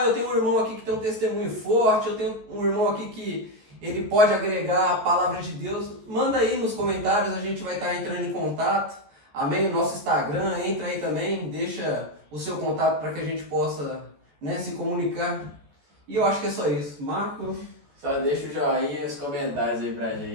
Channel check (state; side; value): late; left; 14 ms